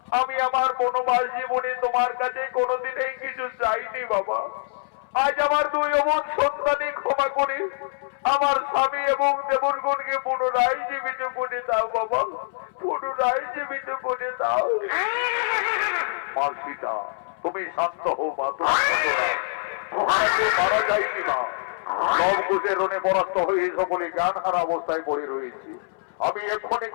আমি আমার বনবাস জীবনে তোমার কাছে কোনোদিনই কিছু চাইনি বাবা। আজ আমার দুই অমন সন্তানই ক্ষমা করে আমার স্বামী এবং দেবরগণকে পুনরায় জীবিত করে দাও বাবা, পুনরায় জীবিত করে দাও। মা সীতা, তুমি শান্ত হও মা, মারা যায়নি মা। লবকুশের রণে পরাস্ত হয়ে সকলে জ্ঞান হারা অবস্থায় পড়ে রয়েছে। আমি এক্ষুনি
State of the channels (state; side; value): silent; right; 62 dB below the other